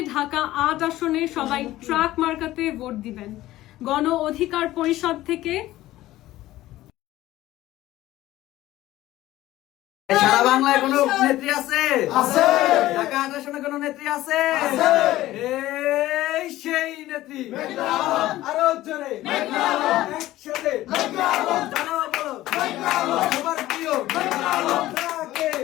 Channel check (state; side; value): quieter; right; 15.7 dB